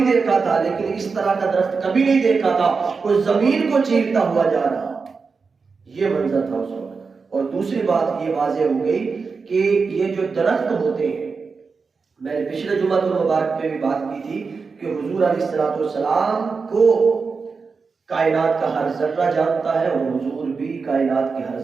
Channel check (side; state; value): left; quieter; 4.8 dB